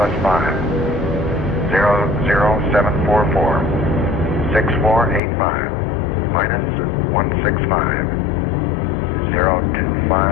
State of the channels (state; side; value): drops out; right; at 5.2 s